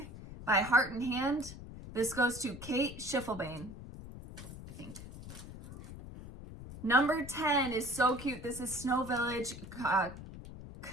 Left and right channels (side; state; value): left; noise; rumble, 13 dB below the sound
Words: by Heart and Hand. This goes to Kate Schiffelbane, I think. Number 10 is so cute. This is Snow Village